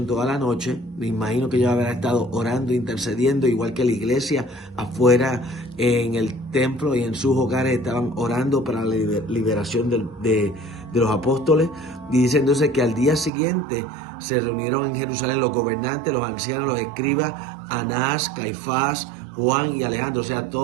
toda la noche. Me imagino que ellos habrán estado orando, intercediendo, igual que la iglesia afuera en el templo y en sus hogares estaban orando para la liberación de los apóstoles. Y dice entonces que al día siguiente se reunieron en Jerusalén los gobernantes, los ancianos, los escribas, Anás, Caifás, Juan y Alejandro, o sea,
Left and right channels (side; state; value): left; drops out; at 13.3 s